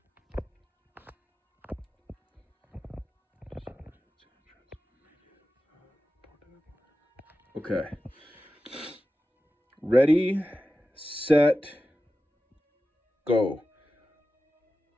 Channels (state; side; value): normal; both; correlation 0.94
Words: Okay. Ready, set, go.